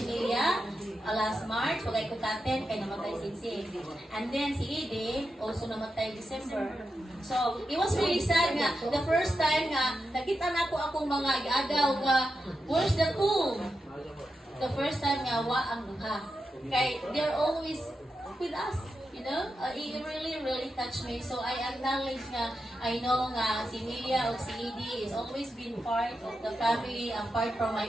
Milia last March, wagay ko katen, kay namatay si And then si Edie, also namatay December. So, it was really sad nga. The first time nga, nakita na ko akong mga agaw nga, where's the cool? The first time nga, wa ang duha. Kay, they're always with us. You know, it really touched me. So I acknowledge nga, I know nga si Milia o si Edie is always been part of the family, apart from my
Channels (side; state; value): both; normal; correlation 0.88